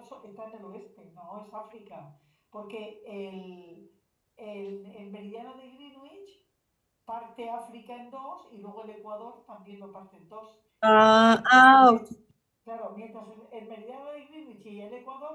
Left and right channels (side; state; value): both; identical; correlation 1.00